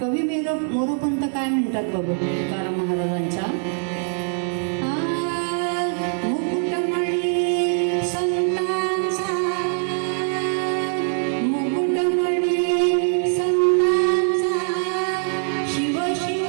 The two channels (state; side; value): silent; left; 64 dB below the other